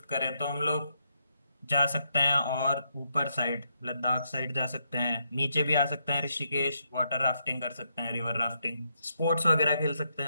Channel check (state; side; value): inverted; both; correlation -0.79